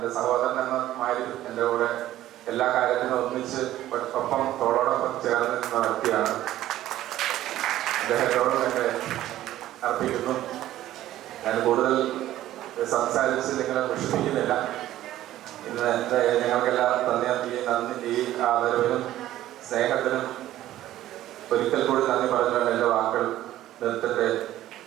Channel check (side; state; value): left; quieter; 13.9 dB